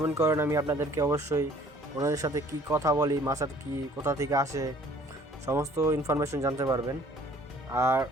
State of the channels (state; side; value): normal; both; correlation 0.55